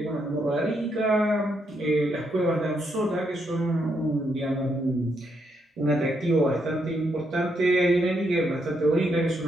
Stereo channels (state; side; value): normal; both; correlation 0.78